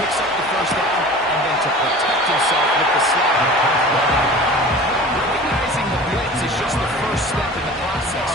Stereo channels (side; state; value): both; normal; correlation 0.40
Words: picks up the first down, and then to protect himself with the slide. Recognizing the blitz is just the first step in the process